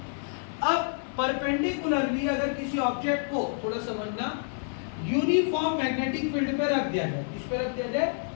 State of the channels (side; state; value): right; silent; 59 dB below the other